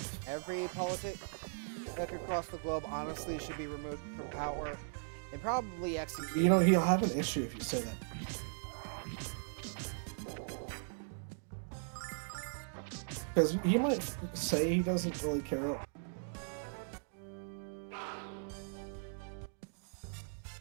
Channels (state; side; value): silent; left; digital silence